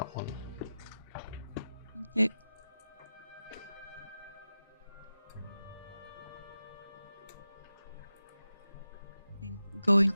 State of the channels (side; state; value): both; inverted; correlation -0.94